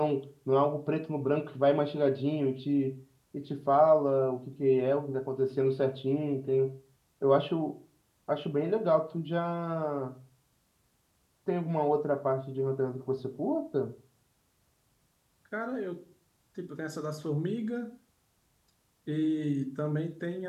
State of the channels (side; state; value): both; identical; correlation 1.00